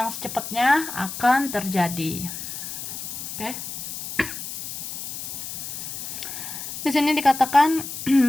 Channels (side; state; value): left; noise; hiss, 7 dB below the sound